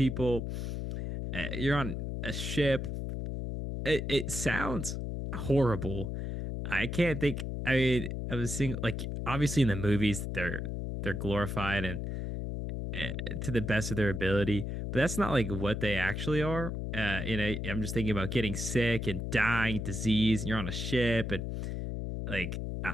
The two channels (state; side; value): noise; left; hum, 4 dB below the sound